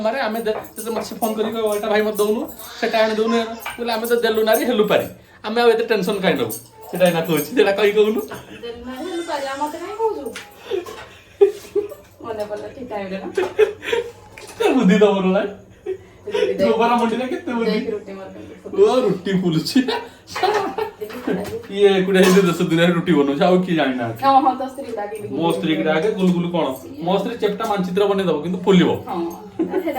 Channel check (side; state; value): both; identical; correlation 1.00